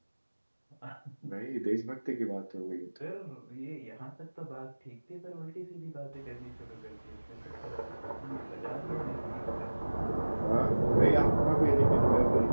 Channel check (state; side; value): inverted; both; correlation -1.00